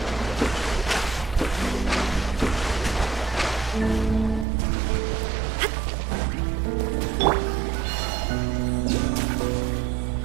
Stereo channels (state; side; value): drops out; left; at 4.5 s